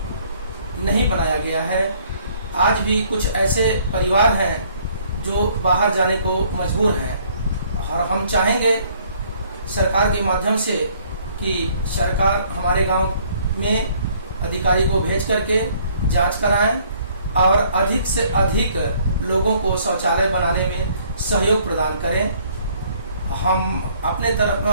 नहीं बनाया गया है। आज भी कुछ ऐसे परिवार हैं जो बाहर जाने को मजबूर हैं, और हम चाहेंगे सरकार के माध्यम से कि सरकार हमारे गांव में अधिकारी को भेज करके जांच कराएं और अधिक से अधिक लोगों को शौचालय बनाने में सहयोग प्रदान करें। हम अपने तरफ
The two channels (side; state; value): both; inverted; correlation -0.61